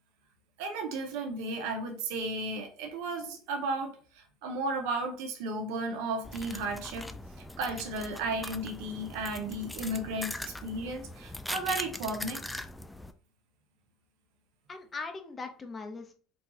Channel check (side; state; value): both; normal; correlation 0.25